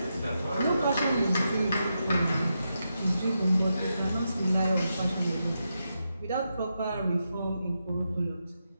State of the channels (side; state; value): both; inverted; correlation -0.86